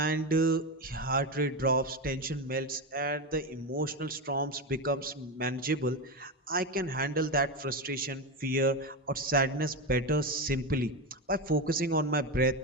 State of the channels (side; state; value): both; normal; correlation 0.15